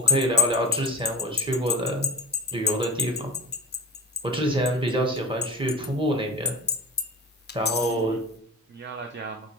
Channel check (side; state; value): both; normal; correlation 0.31